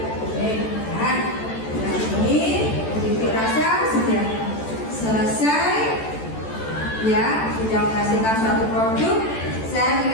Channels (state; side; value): late; right; 14 ms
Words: nah, ini dirasa sudah selesai ya, sudah menghasilkan suatu produk. Saya